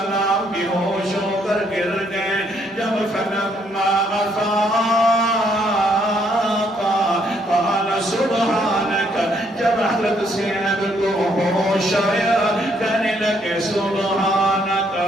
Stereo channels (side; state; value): both; normal; correlation 0.70